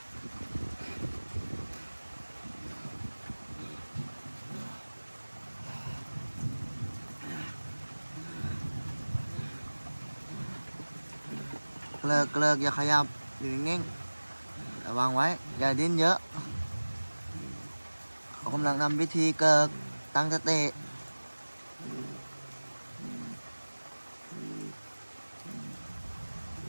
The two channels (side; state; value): both; inverted; correlation -1.00